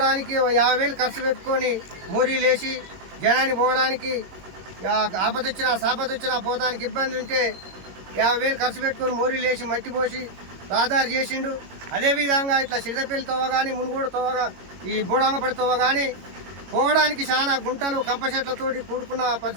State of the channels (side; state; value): left; late; 22 ms